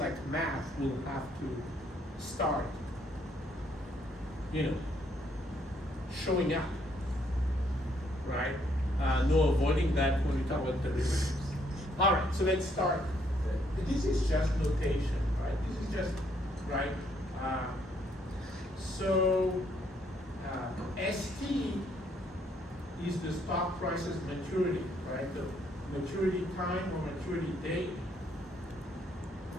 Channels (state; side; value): normal; both; correlation 0.70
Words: math will have to start, showing up, right? No avoiding that when we talk about derivatives. All right, so let's start. This is just notation, right? This is just, right? ST is the stock price's maturity, right? The maturity time or maturity date